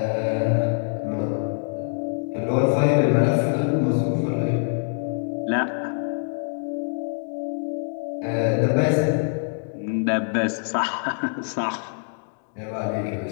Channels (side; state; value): right; silent; digital silence